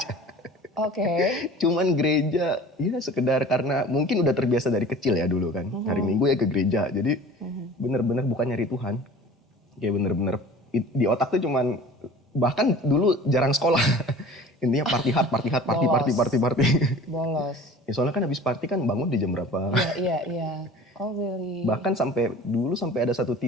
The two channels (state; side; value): normal; both; correlation 0.43